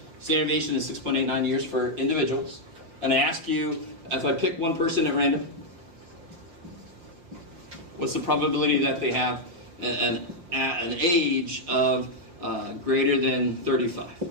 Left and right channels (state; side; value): late; left; 5.3 ms